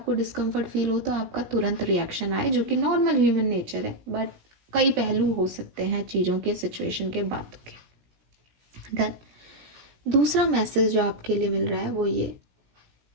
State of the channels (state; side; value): late; left; 17 ms